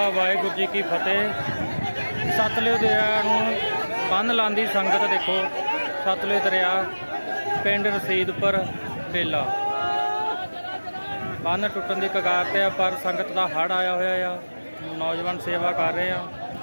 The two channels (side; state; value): both; inverted; correlation -1.00